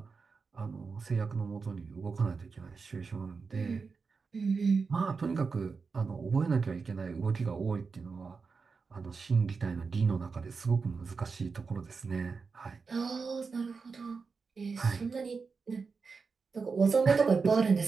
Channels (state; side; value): quieter; left; 4.9 dB